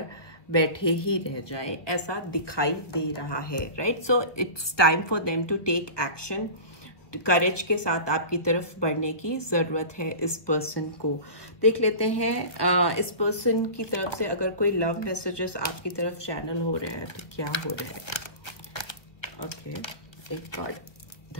बैठे ही रह जाए, ऐसा दिखाई दे रहा है, right. So it's time for them to take action. Courage के साथ आपकी तरफ बढ़ने की जरूरत है इस पर्सन को. देख लेते हैं इस पर्सन की तरफ से अगर कोई लव मैसेजेस आपकी तरफ चैनल हो रहे हैं तो क्या हो रहे हैं. ओके, एक कार्ड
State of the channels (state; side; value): late; right; 1.3 ms